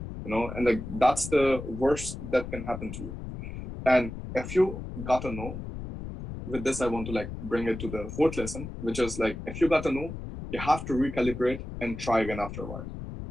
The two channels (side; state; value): left; noise; rumble, 9 dB below the sound